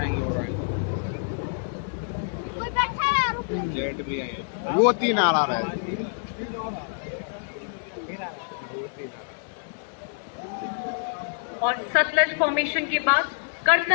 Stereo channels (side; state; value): right; silent; 59 dB below the other